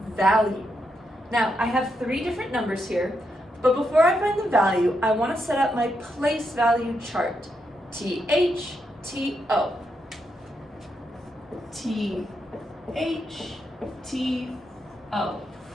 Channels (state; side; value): normal; both; correlation 0.82